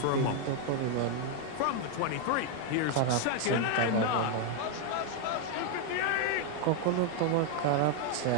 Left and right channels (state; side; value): different; both; correlation 0.01